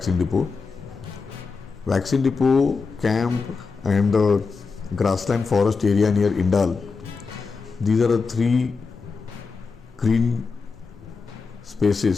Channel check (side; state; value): right; quieter; 4.7 dB